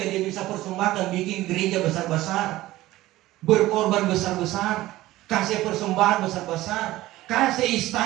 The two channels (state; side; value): quieter; left; 16.7 dB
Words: bisa persembahkan, bikin gereja besar-besar, berkorban besar-besar, kasih persembahan besar-besar, kasih